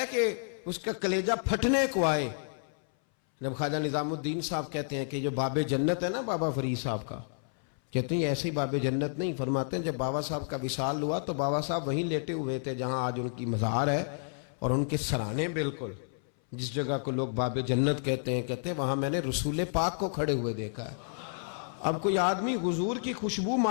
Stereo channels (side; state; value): right; silent; 57 dB below the other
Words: کہ اس کا کلیجہ پھٹنے کو آئے. جب خواجہ نظام الدین صاحب کہتے ہیں کہ جو باب جنت ہے نا بابا فرید صاحب کا، کہتے ہیں ایسے ہی باب جنت نہیں. فرماتے ہیں جب بابا صاحب کا وصال ہوا تو بابا صاحب وہیں لیٹے ہوئے تھے جہاں آج ان کی مزار ہے، اور ان کے سرانے بالکل جس جگہ کو لوگ باب جنت کہتے ہیں وہاں میں نے رسول پاک کو کھڑے ہوئے دیکھا ہے. اب کوئی آدمی حضور کی خوشبو